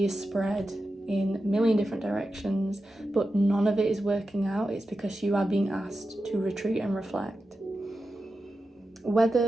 is spread in a million different directions, but none of it is working out, it's because you are being asked to retreat and reflect.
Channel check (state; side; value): normal; both; correlation 0.91